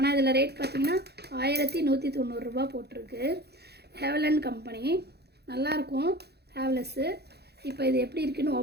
இதில் ரேட் பார்த்திங்கன்னா 1190 ரூபா போட்டிருக்கு. ஹேவலன் கம்பெனி, நல்லாயிருக்கும் ஹேவ்லெஸ்ஸு. இப்போ இது எப்படி இருக்குன்னு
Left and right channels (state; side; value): late; left; 0.48 ms